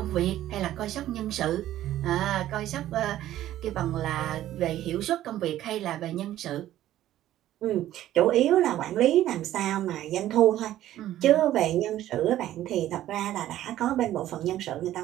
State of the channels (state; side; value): quieter; left; 13.3 dB